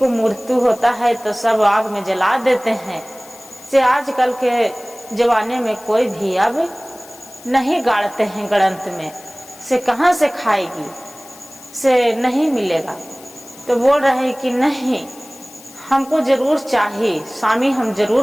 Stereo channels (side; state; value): left; noise; hiss, 21 dB below the sound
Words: मृत्यु होता है तो सब आग में जला देते हैं, से आजकल के जमाने में कोई भी अब नहीं गाड़ते हैं गणंत में, से कहाँ से खाएगी, से नहीं मिलेगा। तो बोल रहे कि नहीं हमको जरूर चाहिए स्वामी, हम